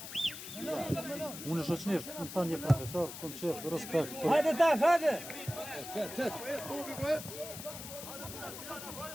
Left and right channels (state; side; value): noise; left; hiss, 10 dB below the sound